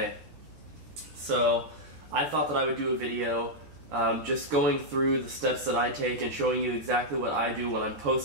So I thought that I would do a video just going through the steps that I take and showing you exactly what I do when I'm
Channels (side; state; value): left; late; 14 ms